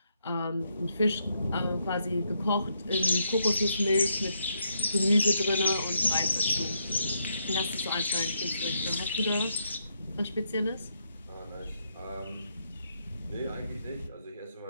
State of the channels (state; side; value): inverted; both; correlation -0.78